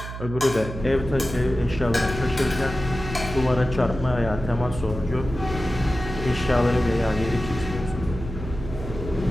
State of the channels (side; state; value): right; noise; hum, 9 dB below the sound